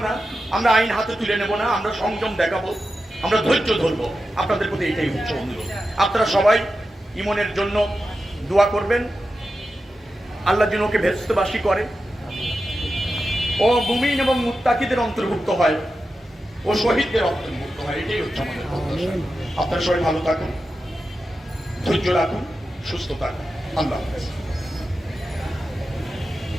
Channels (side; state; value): both; normal; correlation 0.91